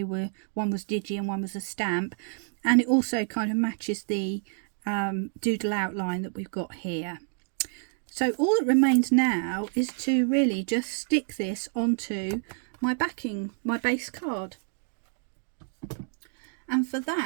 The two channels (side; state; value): left; silent; 59 dB below the other